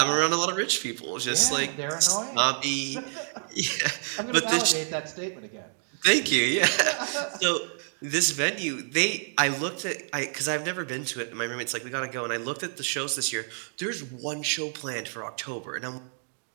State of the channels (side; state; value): left; silent; 59 dB below the other